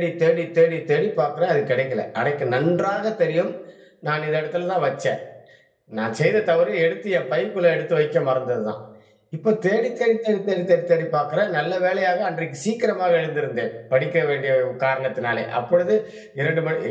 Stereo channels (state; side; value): identical; both; correlation 1.00